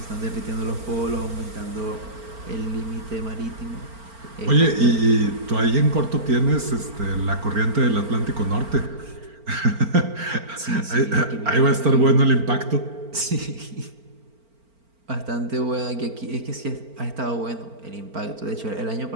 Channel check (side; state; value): left; late; 4.4 ms